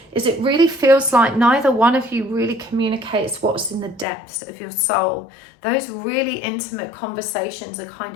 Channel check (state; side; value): drops out; right; at 4.0 s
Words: is it really feels like neither one of you really communicates what's in the depths of your soul. Those really intimate conversations are kind